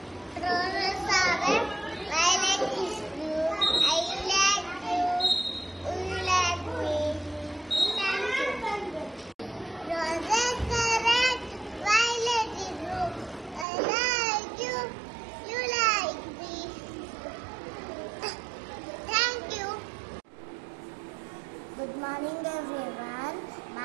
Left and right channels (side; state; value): left; drops out; at 13.7 s